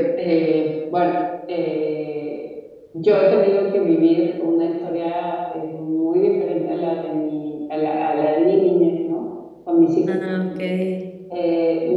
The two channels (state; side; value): identical; both; correlation 1.00